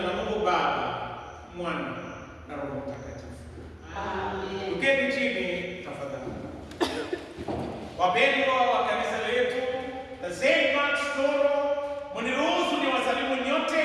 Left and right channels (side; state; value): both; identical; correlation 1.00